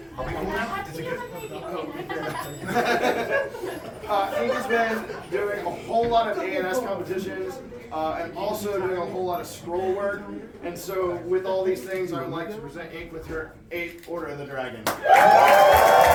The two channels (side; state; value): both; identical; correlation 1.00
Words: Are we cool now? Is it good? Ink has been doing a whole lot of A&S competitions and also doing a whole lot of scroll work. And so with all these things, I would like to present Ink with her 8th Order of the Dragon.